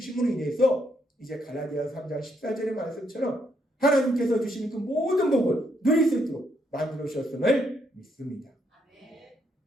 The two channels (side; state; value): both; normal; correlation 0.75